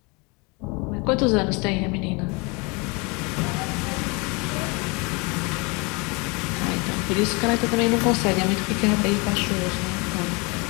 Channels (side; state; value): right; quieter; 28.9 dB